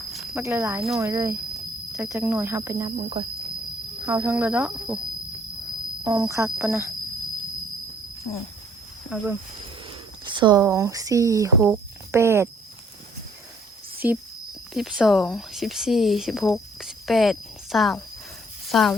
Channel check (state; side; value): normal; both; correlation 0.62